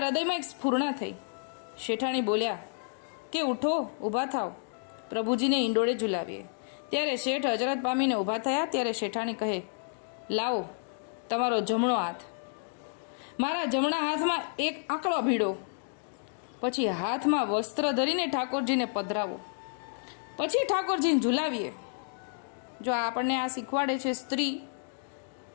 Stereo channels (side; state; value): right; silent; digital silence